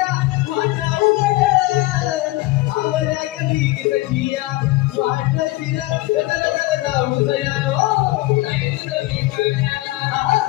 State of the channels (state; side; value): quieter; right; 19.3 dB